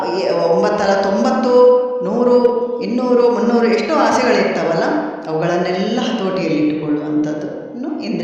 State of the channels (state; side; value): identical; both; correlation 1.00